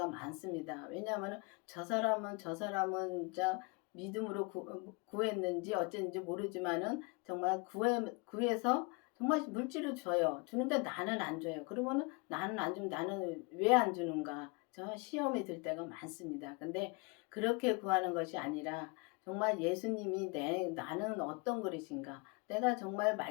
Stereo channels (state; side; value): quieter; right; 30.0 dB